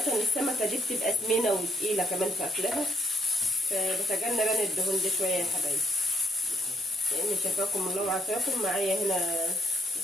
السمكه دي بتبقى سمينه وتقيله كمان في اكلها، فبتجنب انا الدهون دي شويه يا حبايبي، لان شفاكم الله وعافاكم معايا هنا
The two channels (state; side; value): normal; both; correlation 0.73